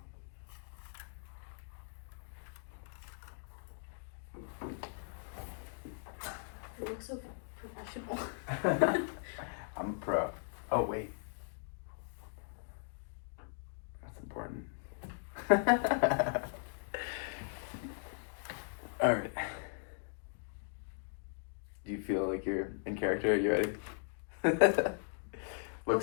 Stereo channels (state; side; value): silent; right; digital silence